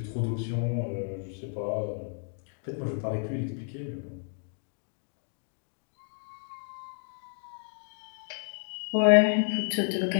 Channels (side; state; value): right; silent; 57 dB below the other